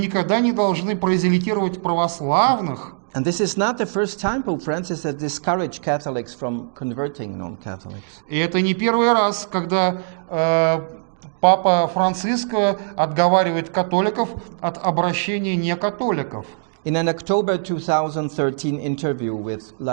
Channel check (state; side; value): silent; left; digital silence